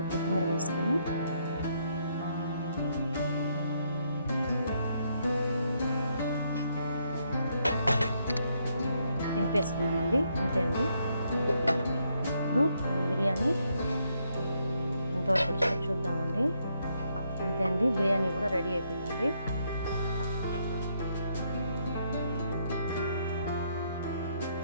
కొత్తిమీర వేసుకొని దింపేసుకున్నామండి. అంతే అండి, ఇప్పుడు బిర్యానీ ఎంతవరకు వచ్చిందో చూద్దామండి. అంతే అండి, బిర్యానీ కూడా రెడీ అయిపోయిందండి.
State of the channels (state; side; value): inverted; both; correlation -0.75